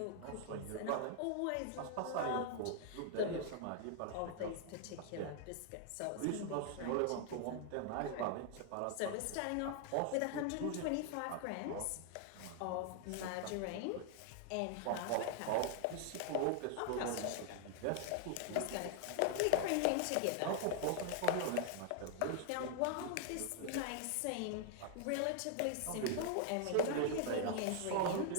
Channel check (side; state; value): both; different; correlation 0.00